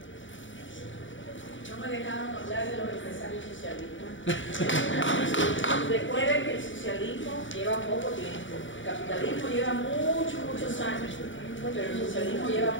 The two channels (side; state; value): right; late; 0.56 ms